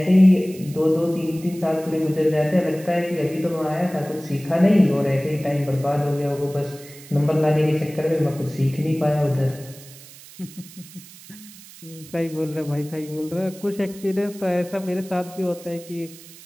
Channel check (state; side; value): noise; right; hiss, 19 dB below the sound